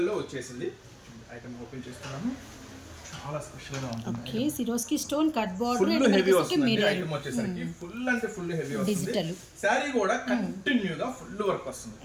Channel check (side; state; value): both; identical; correlation 1.00